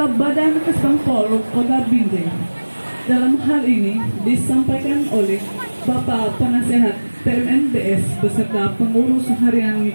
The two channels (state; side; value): inverted; both; correlation -1.00